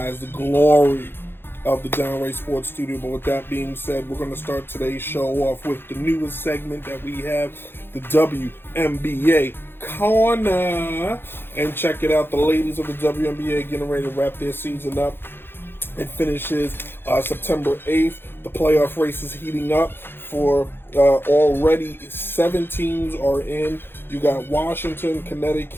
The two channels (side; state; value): right; late; 0.10 ms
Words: the glory of the Downright Sports studio. But with that being said, we're going to start today's show off with the newest segment that we have, the WNBA Corner. And check it out, the ladies of the WNBA getting ready to wrap their season up. It finishes September 8th. The playoff race is heating up for already 7 teams are in. You got Washington,